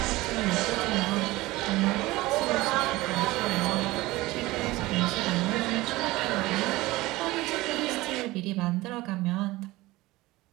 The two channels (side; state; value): left; quieter; 19.4 dB